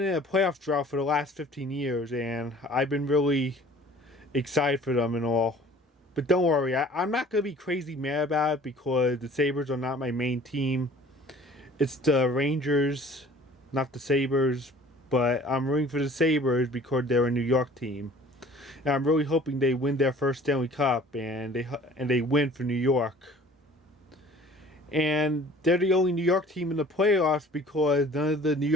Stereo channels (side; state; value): both; normal; correlation 0.49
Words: in a playoff drought for the last 15 years, and I've been really excited for them and all. But don't worry, I'm not going to be crazy mad about it because the Sabres are not my main team. It's the Rangers, not the Sabres. But I'm rooting for the Sabres because they're a New York team. And I'm really hoping they win their first Stanley Cup and they win for New York. And they're the only New York team in the playoffs because none of the New